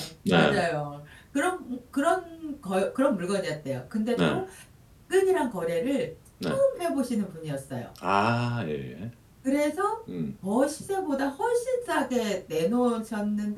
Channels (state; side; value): identical; both; correlation 1.00